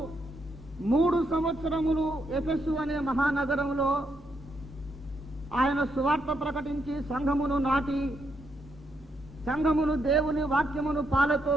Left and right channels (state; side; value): normal; both; correlation 0.78